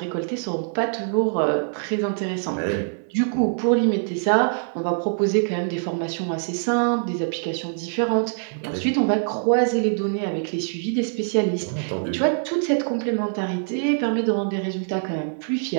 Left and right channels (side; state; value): left; silent; 63 dB below the other